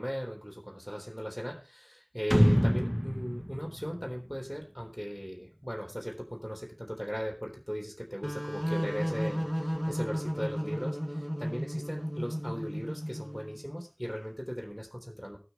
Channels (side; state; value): both; identical; correlation 1.00